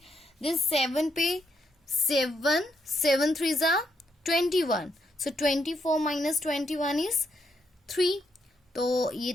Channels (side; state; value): both; normal; correlation 0.77